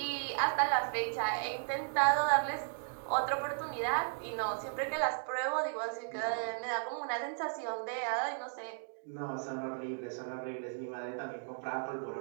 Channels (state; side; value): silent; left; digital silence